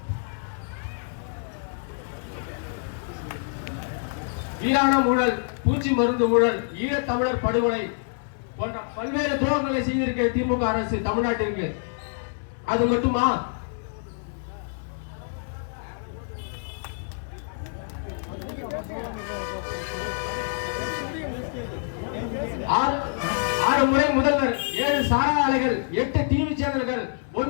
வீராணம் ஊழல், பூச்சி மருந்து ஊழல், ஈழத்தமிழர் படுகொலை போன்ற பல்வேறு துரோகங்களை செய்திருக்க திமுக அரசு தமிழ்நாட்டிற்கு. அது மட்டுமா? ஆறு முறை முதல்வர், 7 சாரா ஆலைகள், 8 டிவி சேனல்கள்,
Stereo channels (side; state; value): right; silent; 61 dB below the other